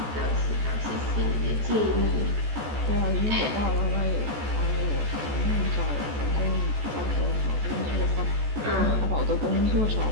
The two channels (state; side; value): late; left; 14 ms